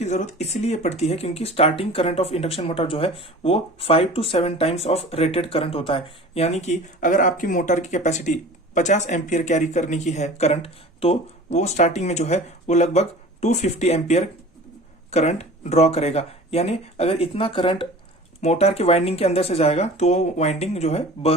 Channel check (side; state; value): both; normal; correlation 0.40